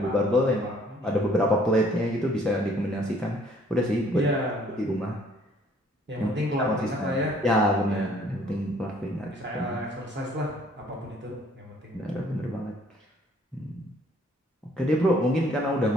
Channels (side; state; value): both; normal; correlation 0.60